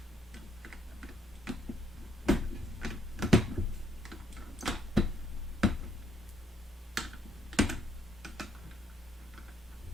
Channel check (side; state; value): both; normal; correlation 0.69